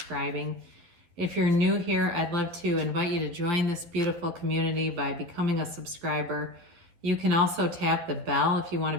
If you're new here, I'd love to invite you to join this beautiful community by becoming a subscriber. You can also tap the bell if you want to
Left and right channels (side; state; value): left; late; 12 ms